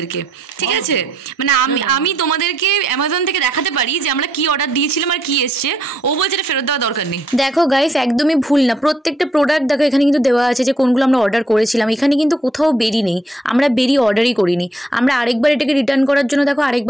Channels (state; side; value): normal; both; correlation 0.72